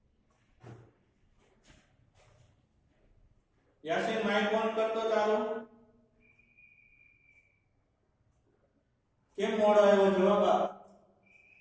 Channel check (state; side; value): identical; both; correlation 1.00